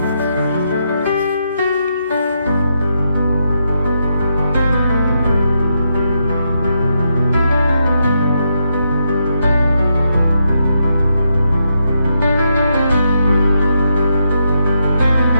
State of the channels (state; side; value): inverted; both; correlation -0.81